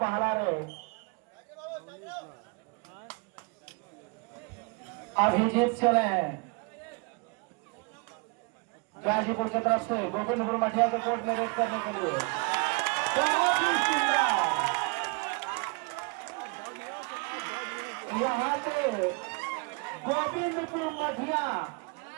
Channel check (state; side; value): quieter; left; 31.1 dB